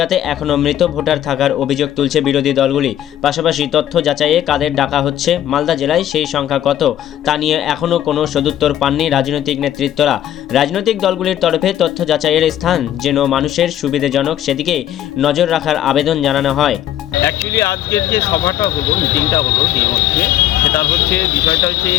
এখনও মৃত ভোটার থাকার অভিযোগ তুলছে বিরোধী দলগুলি। পাশাপাশি তথ্য যাচাইয়ে কাদের ডাকা হচ্ছে, মালদা জেলায় সেই সংখ্যা কত তা নিয়ে এখনও কোনো সদুত্তর পাননি রাজনৈতিক নেতৃত্বরা। রাজনৈতিক দলগুলির তরফে তথ্য যাচাইয়ের স্থান যেন মানুষের সুবিধাজনক সেদিকে নজর রাখার আবেদন জানানো হয়। অ্যাকচুয়ালি আজকের যে সভাটা হলো, মিটিংটা হলো ডিএমওতে, সেটার বিষয়টা হচ্ছে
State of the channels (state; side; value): quieter; right; 11.7 dB